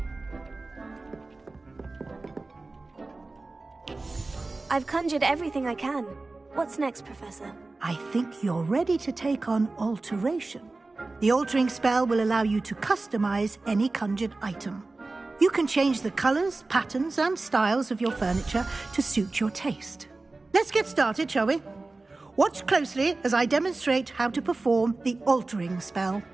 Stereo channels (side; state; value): left; quieter; 3.3 dB